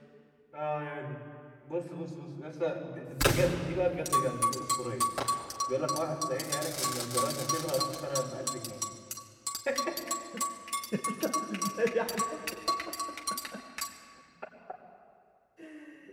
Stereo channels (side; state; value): both; identical; correlation 1.00